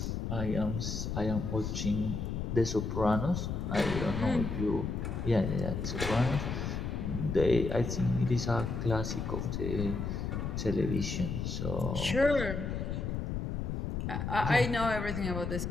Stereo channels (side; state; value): left; noise; rumble, 3 dB below the sound